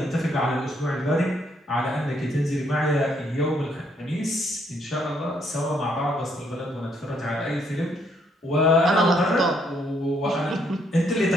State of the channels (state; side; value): normal; both; correlation 0.71